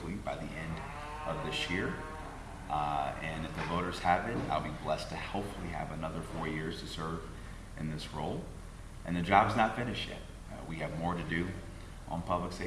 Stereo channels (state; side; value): identical; both; correlation 1.00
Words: by the end of this year. And if the voters have it, I'll be blessed to hopefully have another 4 years to serve in this role. And the job's not finished yet. We have more to do on public